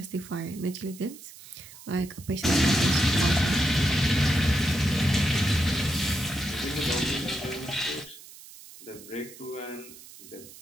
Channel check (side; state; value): right; noise; hiss, 18 dB below the sound